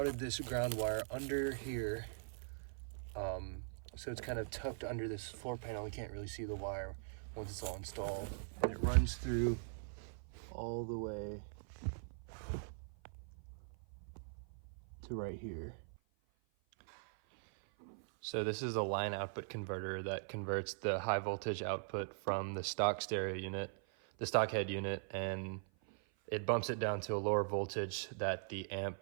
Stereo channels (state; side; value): silent; left; 50 dB below the other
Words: this ground wire under here. So it's kind of tucked under this floor panel. You can't really see the wire once it's all installed. And it runs through all the way to right here. So this is a line output converter that converts the high voltage output from the stock stereo unit, the stock head unit, and it bumps it down to a lower voltage that the